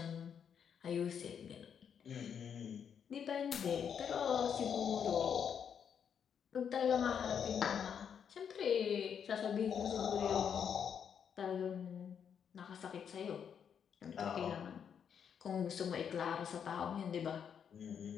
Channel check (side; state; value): right; quieter; 7.7 dB